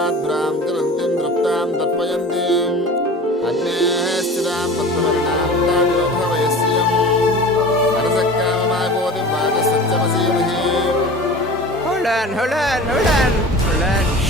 తిరంతిం తృప్తాం తర్పయంతిం అగ్నేః స్థితాం పద్మవర్ణాం తామివభవయస్యం హరసక్కామమాగోదిం వాచసత్యమసీమహి. Hold on.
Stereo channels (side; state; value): both; normal; correlation 0.38